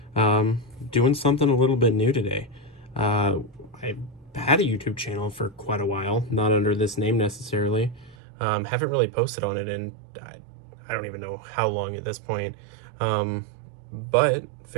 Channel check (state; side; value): drops out; left; at 8.2 s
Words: Doing something a little bit new today. I've had a YouTube channel for quite a while, not under this name necessarily. Haven't really posted on it in I don't even know how long at this point. But